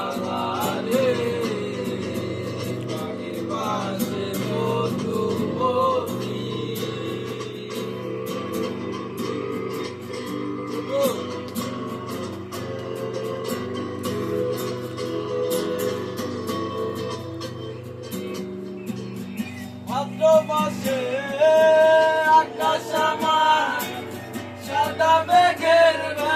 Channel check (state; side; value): identical; both; correlation 1.00